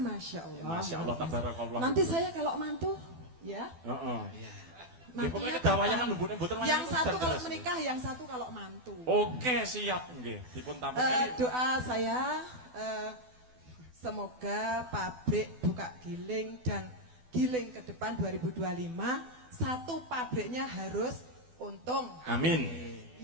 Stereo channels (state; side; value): late; left; 12 ms